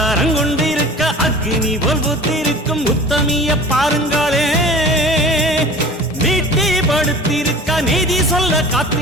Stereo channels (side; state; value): both; normal; correlation 0.41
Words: கொண்டிருக்க அக்னி போல் பூத்திருக்கும் உத்தமிய பாருங்களே. நீட்டி படுத்திருக்க நீதி சொல்ல